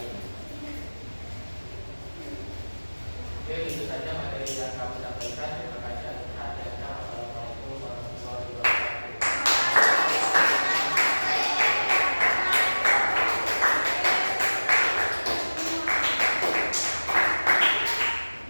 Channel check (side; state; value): both; inverted; correlation -1.00